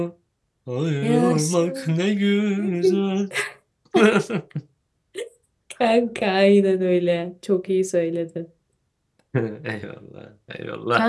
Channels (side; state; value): both; identical; correlation 1.00